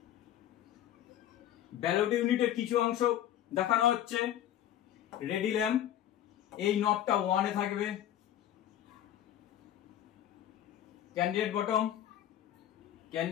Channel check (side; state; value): right; quieter; 11.6 dB